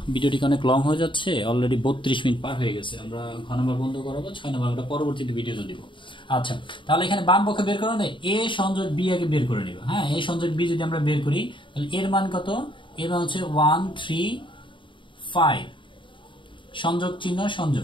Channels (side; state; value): right; late; 0.24 ms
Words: ভিডিওটি অনেক লং হয়ে যাচ্ছে, অলরেডি 32 মিনিট পার হয়ে গেছে, আমরা ঘ নম্বর বন্ধ করাবো, 6 নম্বর আমরা পরবর্তীতে ভিডিওতে দিব। আচ্ছা, তাহলে এখানে বাম পক্ষে বের করে নেই, এ সংযোগ বি আগে বের করে নিব। হ্যাঁ, এ সংযোগ বি যদি আমরা বের করি তাহলে এর মান কত, এর মান হচ্ছে 1 3 5, সংযোগ চিহ্ন